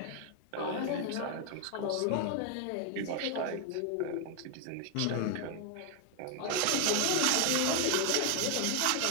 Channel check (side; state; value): both; different; correlation 0.00